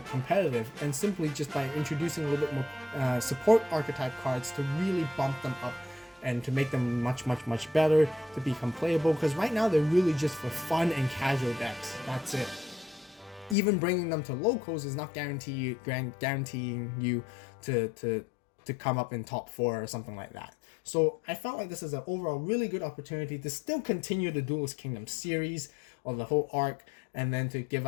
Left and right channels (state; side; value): drops out; right; at 13.6 s